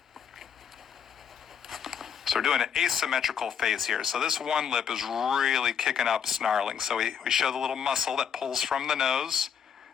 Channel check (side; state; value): right; quieter; 7.8 dB